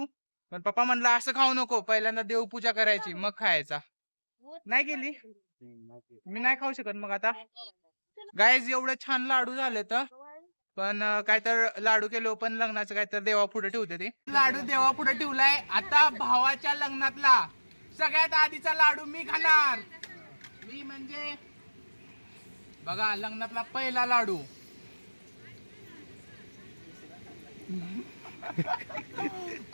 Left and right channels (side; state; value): both; inverted; correlation -1.00